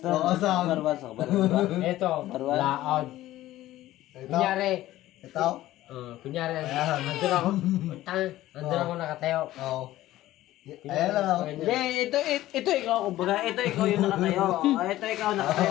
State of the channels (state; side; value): quieter; right; 15.2 dB